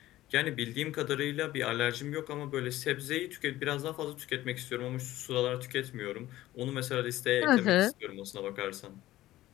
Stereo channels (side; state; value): right; quieter; 15.6 dB